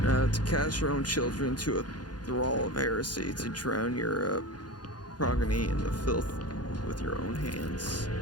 To cast your own children to a thrall of heresy, to drown your progeny in the filth with your own hands.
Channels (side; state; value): right; late; 0.70 ms